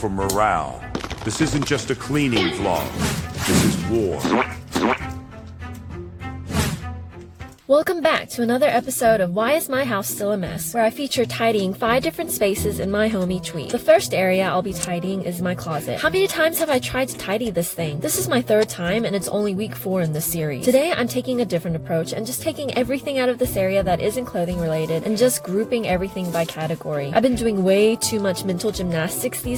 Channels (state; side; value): identical; both; correlation 1.00